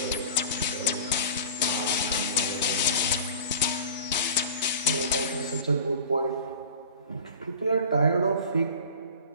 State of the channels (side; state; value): both; inverted; correlation -0.39